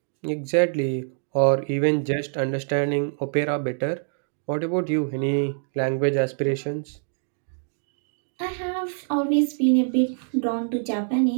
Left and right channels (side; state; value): left; silent; digital silence